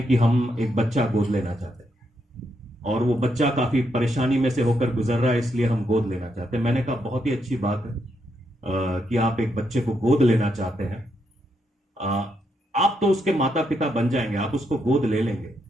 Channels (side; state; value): both; normal; correlation 0.79